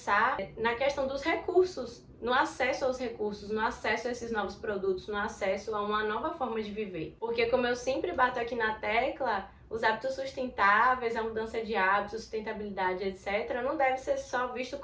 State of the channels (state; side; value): identical; both; correlation 1.00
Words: na questão dos recursos, no acesso aos recursos, no acesso a esses novos produtos, no acesso a uma nova forma de viver. Porque como eu sempre bato aqui na tecla, os hábitos sustentáveis, a mudança de hábitos, sustentabilidade, etc., não deve ser só visto